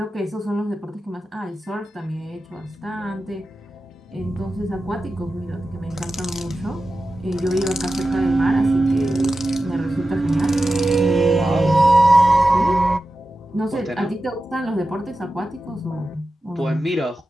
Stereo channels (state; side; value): normal; both; correlation 0.93